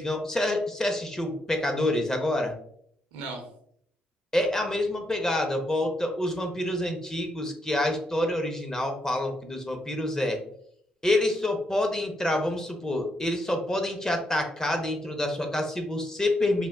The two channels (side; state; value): both; normal; correlation 0.79